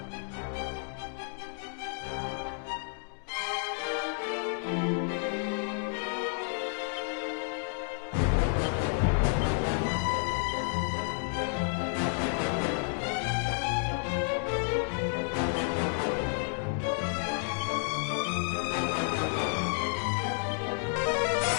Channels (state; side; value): silent; right; 57 dB below the other